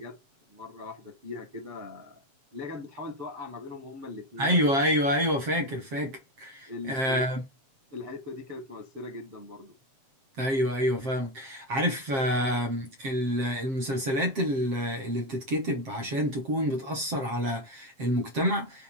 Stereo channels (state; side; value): late; left; 7.5 ms